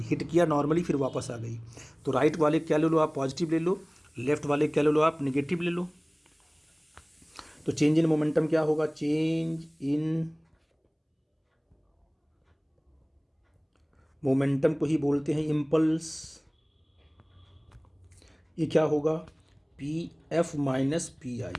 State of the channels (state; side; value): identical; both; correlation 1.00